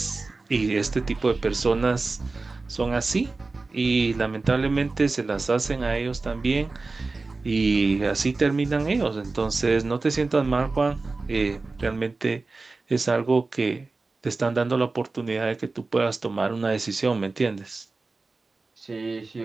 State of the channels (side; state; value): left; quieter; 3.7 dB